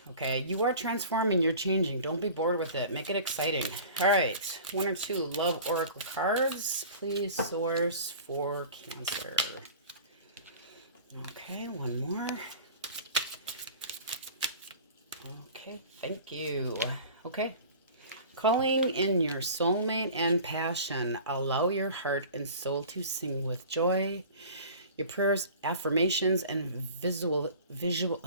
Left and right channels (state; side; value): inverted; both; correlation -0.42